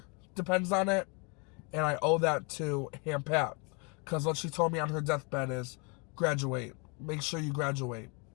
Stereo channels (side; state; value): right; quieter; 32.5 dB